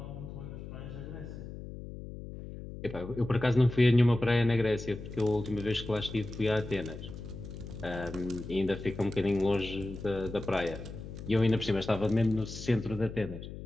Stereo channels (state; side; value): noise; left; hum, 11 dB below the sound